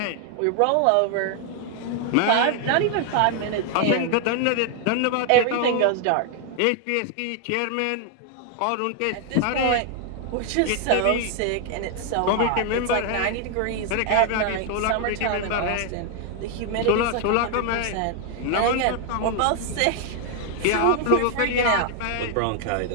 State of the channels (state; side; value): different; both; correlation 0.00